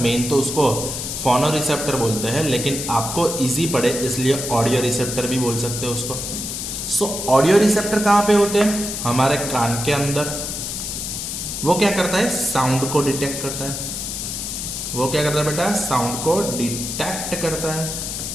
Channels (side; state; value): left; noise; hiss, 5 dB below the sound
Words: तो उसको फोनो रिसेप्टर बोलते हैं, लेकिन आपको इजी पड़े इसलिए ऑडियो रिसेप्टर भी बोल सकते हो उसको। सो ऑडियो रिसेप्टर कहां पे होते हैं? हमारे कान के अंदर। वो क्या करता है? साउंड को डिटेक्ट करता है। वो क्या करता है बेटा? साउंड को डिटेक्ट करता है।